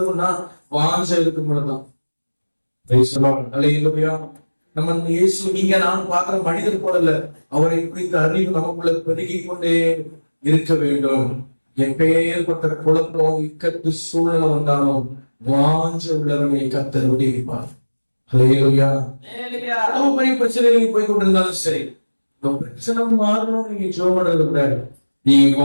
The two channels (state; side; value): inverted; both; correlation -1.00